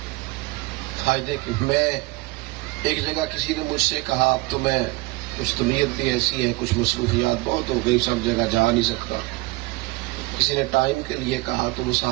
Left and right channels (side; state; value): left; quieter; 22.6 dB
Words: فائدے کی۔ میں ایک جگہ کسی نے مجھ سے کہا اب تو میں کچھ طبیعت بھی ایسی ہے، کچھ مصروفیات بہت ہو گئی، سب جگہ جا نہیں سکتا۔ کسی نے ٹائم کے لیے کہا تو وہ